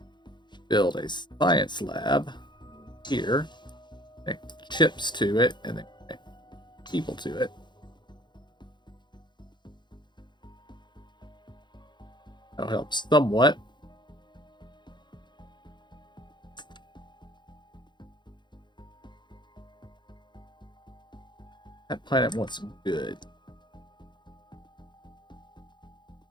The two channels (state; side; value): late; right; 0.22 ms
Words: build a science lab here, connect chips to it, and then connect people to it. That'll help somewhat. That planet wants some good.